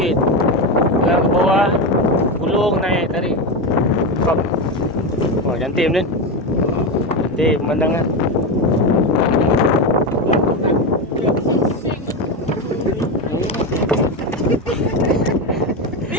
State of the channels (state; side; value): normal; both; correlation 0.15